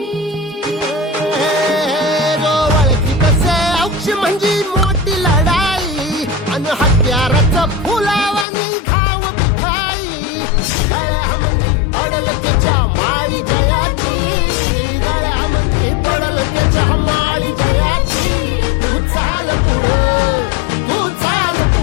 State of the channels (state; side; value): drops out; right; at 8.5 s